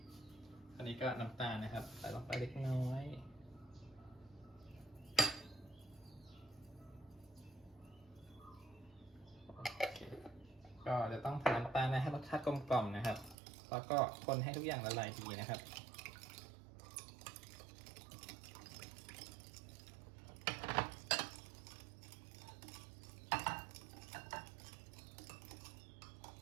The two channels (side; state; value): left; drops out; at 13.4 s